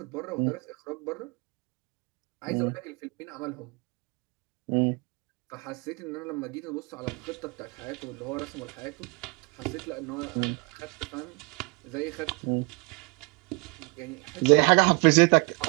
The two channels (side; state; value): left; quieter; 29.7 dB